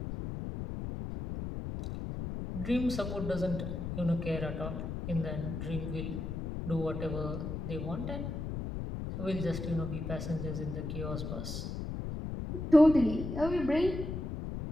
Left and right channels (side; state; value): left; noise; rumble, 5 dB below the sound